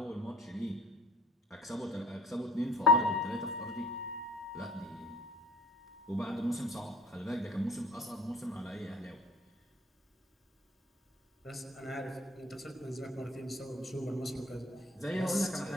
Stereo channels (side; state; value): both; normal; correlation 0.50